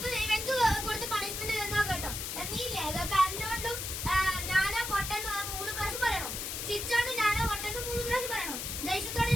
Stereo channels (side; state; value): left; noise; hiss, 4 dB below the sound